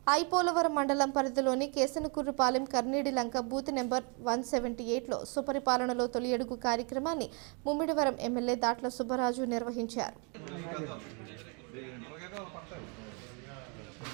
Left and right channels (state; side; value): quieter; left; 35.5 dB